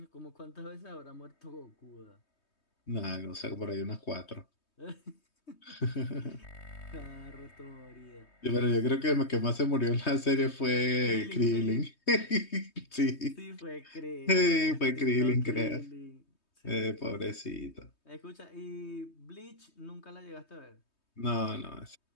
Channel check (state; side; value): late; right; 3.2 ms